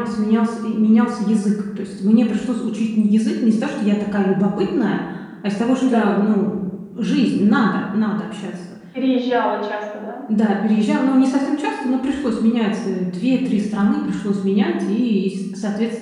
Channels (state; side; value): identical; both; correlation 1.00